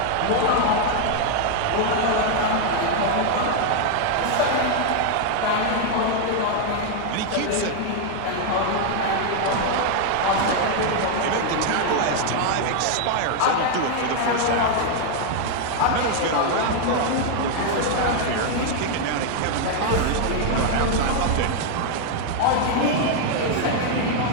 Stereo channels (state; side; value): different; both; correlation 0.00